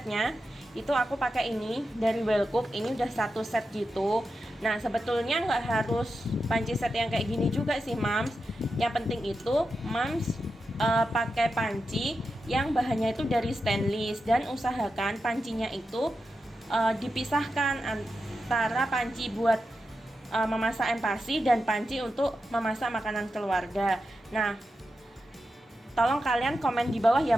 itu aku pakai ini dari Wellcook, ini udah 1 set gitu. Nah sebetulnya nggak harus panci set yang kayak gini juga sih Mams. Yang penting itu Mams pakai panci yang bahannya itu dari stainless, dan usahakan pancinya itu dipisahkan antara panci buat memasak empasi dan panci untuk memasak makanan keluarga. Nah tolong kalian komen di bawah ya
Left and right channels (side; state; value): both; normal; correlation 0.89